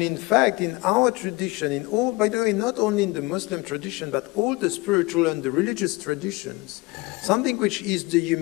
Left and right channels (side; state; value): right; quieter; 23.2 dB